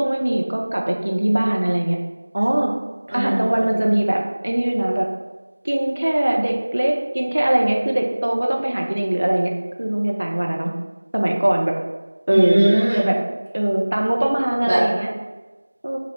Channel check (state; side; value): inverted; both; correlation -1.00